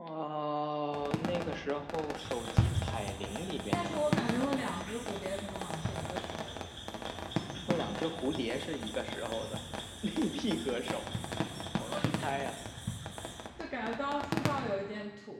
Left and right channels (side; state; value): both; identical; correlation 1.00